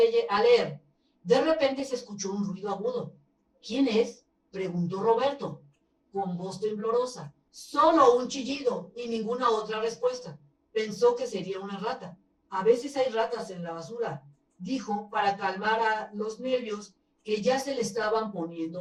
De repente se escuchó un ruido agudo. ¿Quién es? Preguntó Roberto, con voz temblorosa. Solo un chillido y ninguna otra respuesta. Pensó que sería una rata. A veces hay ratas en la basura, dijo para calmar a los nervios que ya se le estaban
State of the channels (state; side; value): identical; both; correlation 1.00